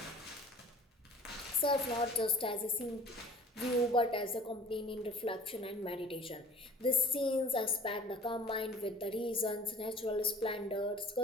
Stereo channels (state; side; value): normal; both; correlation 0.46